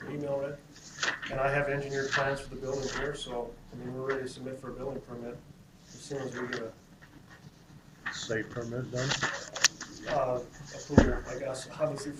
email read? And I have engineered plans for the building here, so, I mean, we're ready to submit for a building permit as soon as we get a Site permit done? approval, I guess, obviously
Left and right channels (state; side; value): identical; both; correlation 1.00